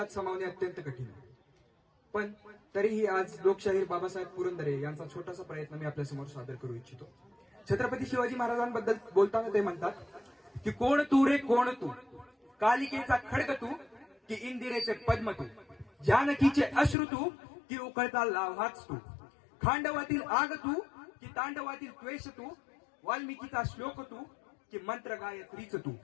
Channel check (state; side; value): drops out; right; at 16.9 s